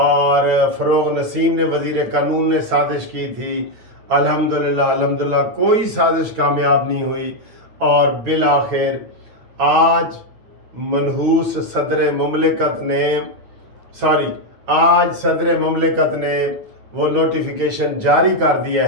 फ़रोग़ नसीम ने वज़ीर कानून ने साजिश की थी। अल्हम्दुलिल्लाह कोई साजिश कामयाब नहीं हुई और बिल आखिर आज मनहूस सदर ममलिकत ने वो नोटिफिकेशन जारी कर दिया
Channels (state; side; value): late; left; 9.0 ms